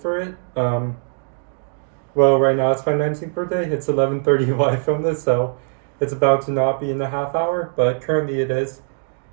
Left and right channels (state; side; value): silent; left; digital silence